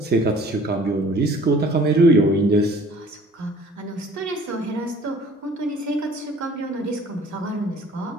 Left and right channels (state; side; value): normal; both; correlation 0.51